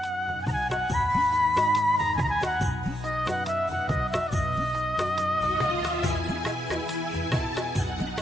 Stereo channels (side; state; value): both; normal; correlation 0.81